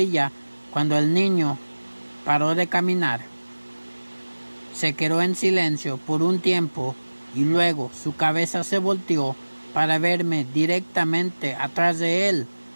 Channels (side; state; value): both; inverted; correlation -1.00